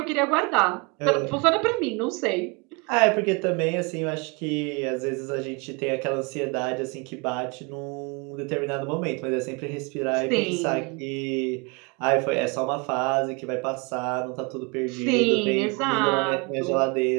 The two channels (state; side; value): quieter; left; 30.3 dB